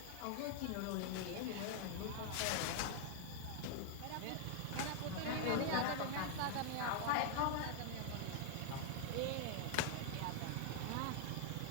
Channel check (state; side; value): different; both; correlation 0.00